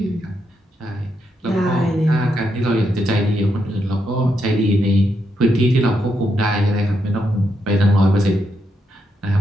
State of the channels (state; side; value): normal; both; correlation 0.81